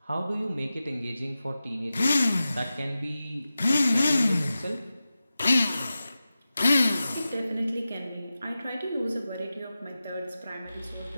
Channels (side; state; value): both; inverted; correlation -0.94